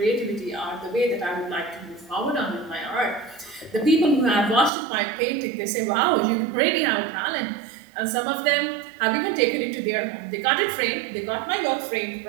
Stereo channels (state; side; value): drops out; left; at 4.7 s